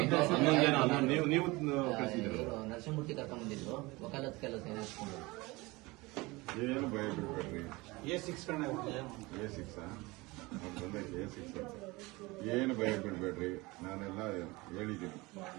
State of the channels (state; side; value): quieter; left; 22.7 dB